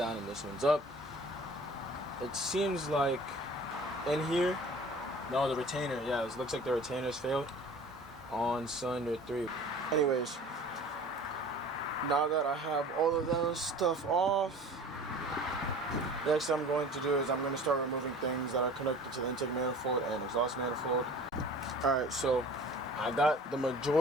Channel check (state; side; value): normal; both; correlation 0.44